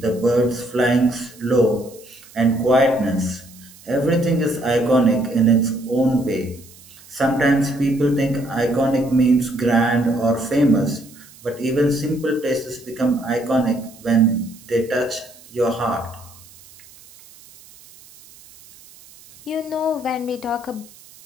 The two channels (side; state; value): right; noise; hiss, 23 dB below the sound